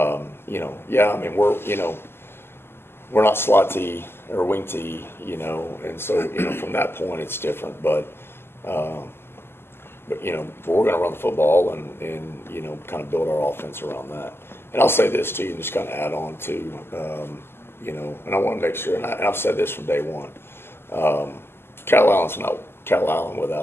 mean we're not slot T or wing T, and so from that point it's different. But we're going to run the football and kind of build our offense around that. And I'll say this too, and just kind of add on to and I want to make sure, and I've said this from day one. Calallen's not Calallen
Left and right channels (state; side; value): late; right; 0.12 ms